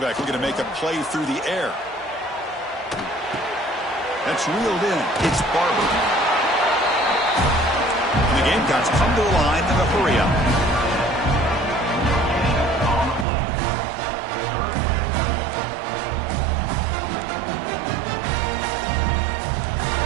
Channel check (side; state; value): left; drops out; at 13.2 s